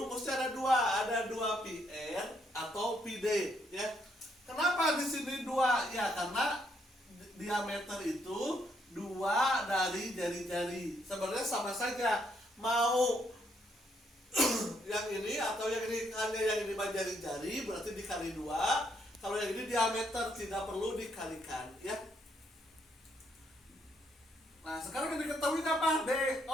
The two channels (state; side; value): normal; both; correlation 0.73